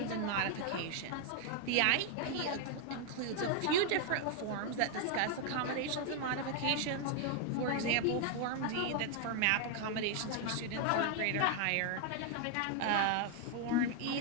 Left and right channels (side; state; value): both; different; correlation 0.00